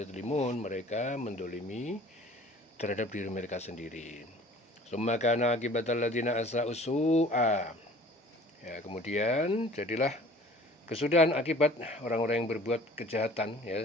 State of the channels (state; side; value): normal; both; correlation 0.49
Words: mereka mendolimi terhadap diri mereka sendiri. Summa kana akibatal ladzina asa'u su'a, ya, kemudian jadilah kesudahan akibat orang-orang yang berbuat kejahatan,